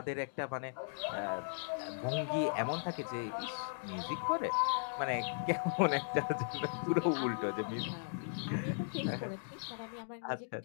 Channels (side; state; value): right; silent; digital silence